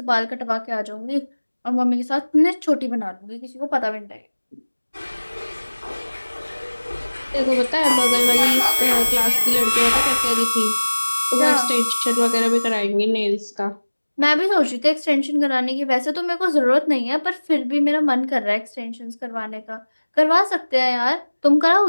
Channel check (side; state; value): both; inverted; correlation -1.00